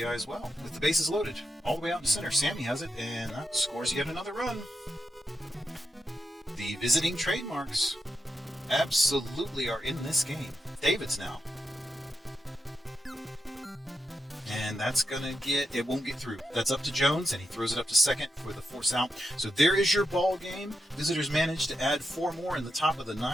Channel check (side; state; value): both; normal; correlation 0.86